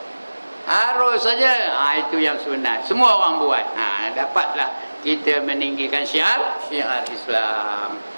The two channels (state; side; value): inverted; both; correlation -1.00